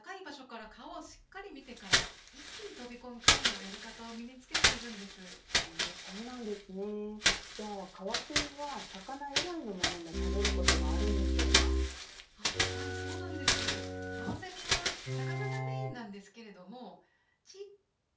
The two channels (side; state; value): both; identical; correlation 1.00